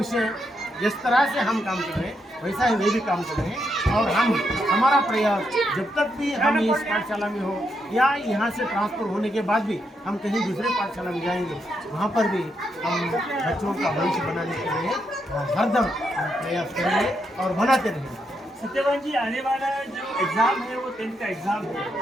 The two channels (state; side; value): normal; both; correlation 0.80